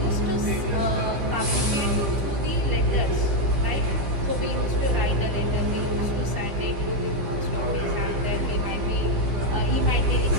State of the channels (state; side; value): late; left; 15 ms